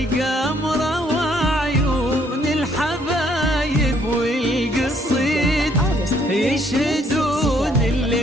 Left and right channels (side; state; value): both; normal; correlation 0.66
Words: وعيون الحبايب والقصيد يشهدون